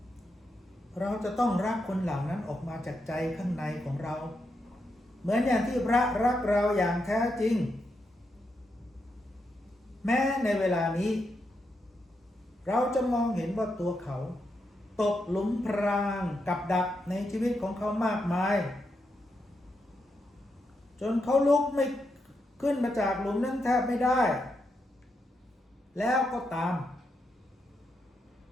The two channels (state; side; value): normal; both; correlation 0.83